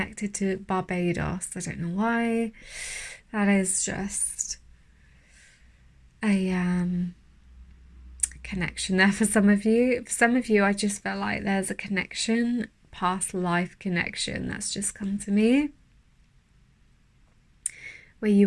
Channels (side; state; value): both; identical; correlation 1.00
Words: to Barbados. I don't know why. That is just a connection there for some of you. For some of you, I just felt like there's a connection, past life connection, that's just come to me, where you